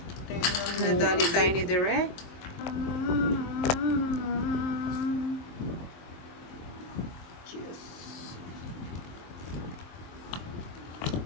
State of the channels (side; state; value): right; late; 23 ms